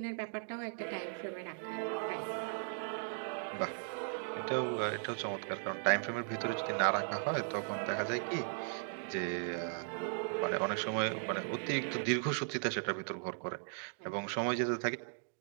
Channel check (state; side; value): silent; left; digital silence